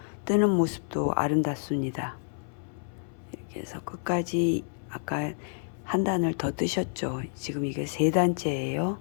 뜨는 모습도 아름답습니다. 이렇게 해서 끝까지 아까 한 단을 더 뜨셨죠. 지금 이게 세 단째예요.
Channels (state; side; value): silent; right; 59 dB below the other